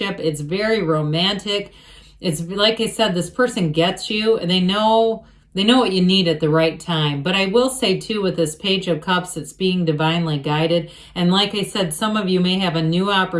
it's very romantic. It's like I said, this person gets you, and they know what you need at the right time. But I will say, too, with this Page of Cups, it's being divinely guided. And like I said, some of you may have a new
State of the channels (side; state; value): both; identical; correlation 1.00